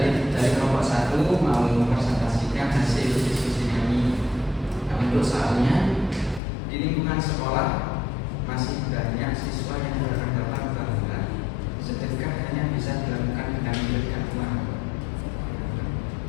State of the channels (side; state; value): right; drops out; at 6.4 s